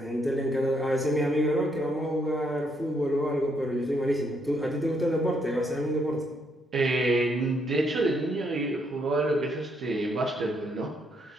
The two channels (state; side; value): normal; both; correlation 0.74